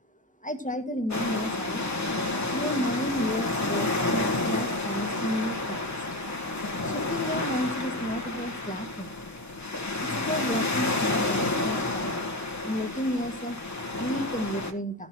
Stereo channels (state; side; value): normal; both; correlation 0.19